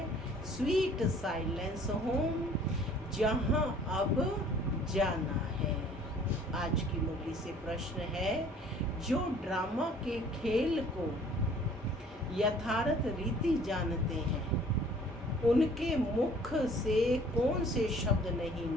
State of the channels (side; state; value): both; normal; correlation 0.53